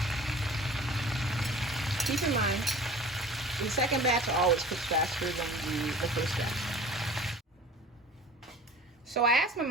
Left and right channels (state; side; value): normal; both; correlation 0.44